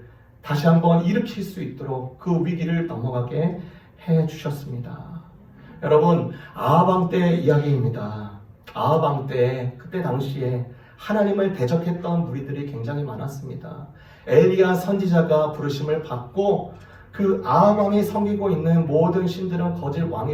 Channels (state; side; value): identical; both; correlation 1.00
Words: 다시 한번 일으킬 수 있도록 그 위기를 넘어가게 해주셨습니다. 여러분 아하방 때 이야기입니다. 아하방 때 그때 당시에 하나님을 대적했던 무리들이 굉장히 많았습니다. 엘리야 선지자가 부르심을 받고 그 아하방이 섬기고 있는 모든 신들은 거짓